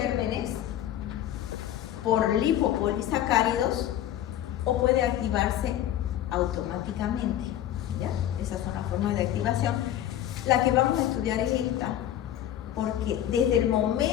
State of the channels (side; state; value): right; quieter; 11.9 dB